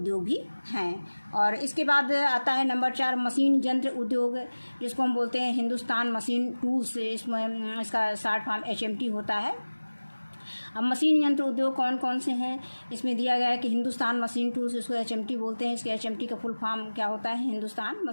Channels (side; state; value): both; inverted; correlation -1.00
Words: भी हैं। और इसके बाद आता है नंबर 4 मशीन यंत्र उद्योग, जिसको हम बोलते हैं हिंदुस्तान मशीन टूल्स। इसमें इसका शॉर्ट फॉर्म HMT होता है। अब मशीन यंत्र उद्योग कौन कौन से हैं, इसमें दिया गया है कि हिंदुस्तान मशीन टूल्स, इसको HMT बोलते हैं। इसके HMT का फुल फॉर्म क्या होता है, हिंदुस्तान